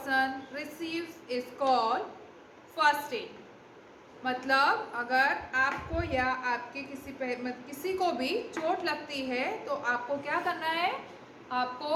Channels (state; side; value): identical; both; correlation 1.00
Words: receives is called first aid. मतलब अगर आपको या आपके किसी को भी चोट लगती है तो आपको क्या करना है?